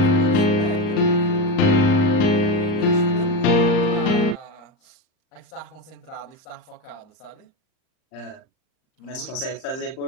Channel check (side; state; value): right; late; 39 ms